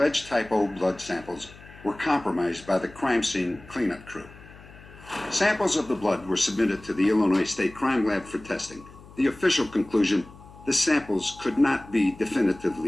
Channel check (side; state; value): left; noise; hum, 20 dB below the sound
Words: type O blood samples were compromised by the crime scene cleanup crew. Samples of the blood were submitted to the Illinois State Crime Lab for testing. The official conclusion, the samples could not be